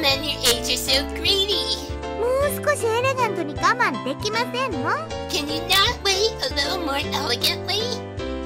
your age are so greedy. もう少しエレガントに我慢できませんの？ Can you not wait a little more elegantly?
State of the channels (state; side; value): identical; both; correlation 1.00